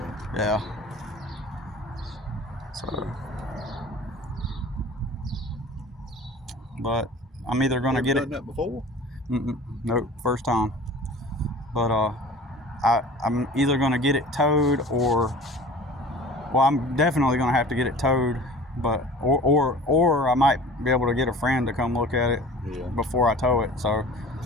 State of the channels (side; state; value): both; normal; correlation 0.42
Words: Yeah. So, but I'm either going to get it. Done that before? Nope, first time. But I'm either going to get it towed, or, well, I'm definitely going to have to get it towed. But or I might be able to get a friend to come look at it before I tow it. So.